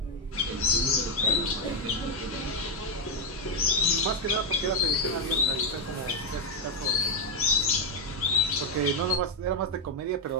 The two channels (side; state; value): both; normal; correlation 0.02